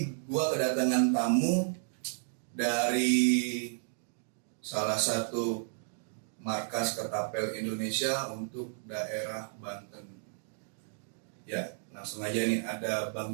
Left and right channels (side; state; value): left; silent; digital silence